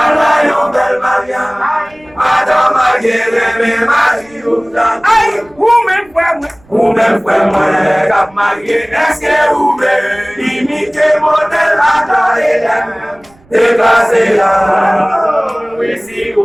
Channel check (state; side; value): noise; right; rumble, 29 dB below the sound